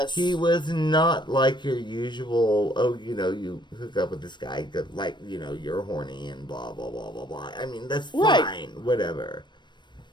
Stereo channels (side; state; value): right; late; 0.22 ms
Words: He was not like your usual, you hook up with this guy, like, you're horny and blah, blah, blah, blah, blah. I mean, that's fine, whatever.